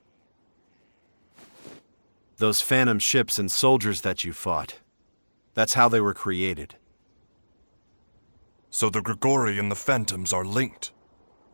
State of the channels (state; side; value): inverted; both; correlation -1.00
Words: Those phantom ships and soldiers that you fought, that's how they were created. So the Grigori and the Phantoms are linked.